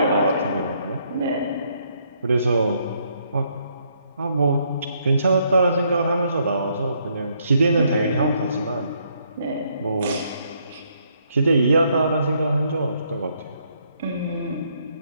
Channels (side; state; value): both; inverted; correlation -0.71